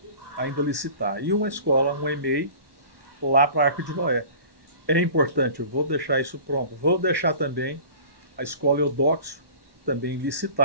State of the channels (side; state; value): left; late; 1.1 ms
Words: ainda licitar. E uma escola, um EMEI, lá para a Arca de Noé. É importante, eu vou deixar isso pronto. Vou deixar também a escola Eudoxo, também